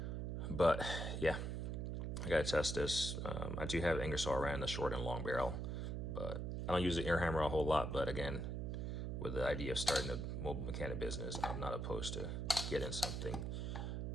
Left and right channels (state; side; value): noise; right; hum, 2 dB below the sound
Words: But yeah, I gotta test this. I do have Ingersoll Rand, the short and long barrel, but I don't use the air hammer a whole lot. But again, with the idea of starting a mobile mechanic business, I'm not opposed to getting something